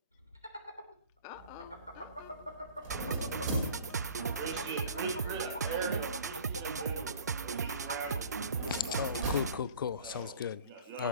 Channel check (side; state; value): both; inverted; correlation -0.45